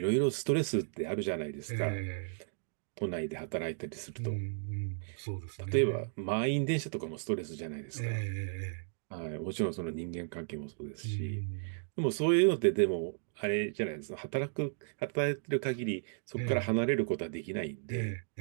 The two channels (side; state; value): left; silent; digital silence